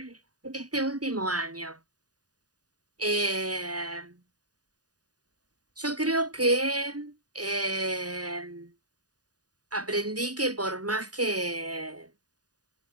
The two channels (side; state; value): left; late; 0.68 ms